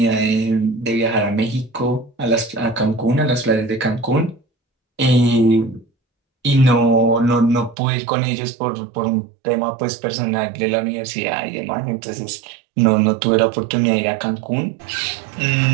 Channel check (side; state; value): left; drops out; at 7.8 s